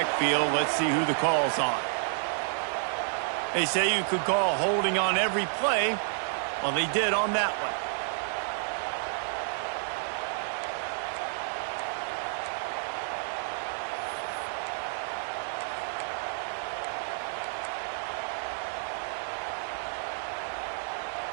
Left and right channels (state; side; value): silent; left; digital silence